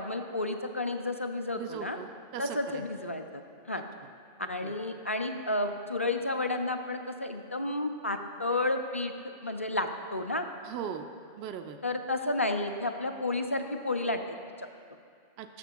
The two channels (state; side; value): inverted; both; correlation -0.47